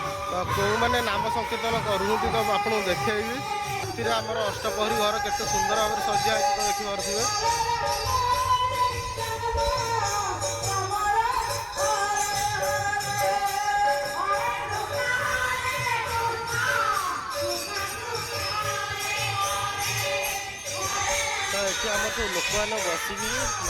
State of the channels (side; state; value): both; identical; correlation 1.00